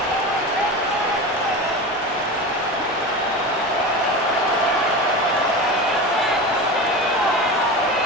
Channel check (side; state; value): both; normal; correlation 0.27